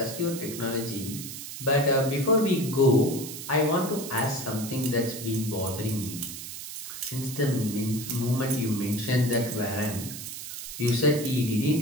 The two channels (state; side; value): noise; right; hiss, 9 dB below the sound